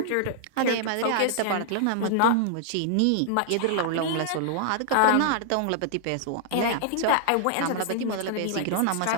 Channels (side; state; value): both; different; correlation -0.01